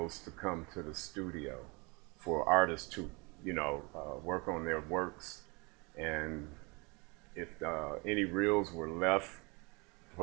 to come to the studio for artists to, work on their works, and if any reels were left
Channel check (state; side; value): quieter; left; 28.5 dB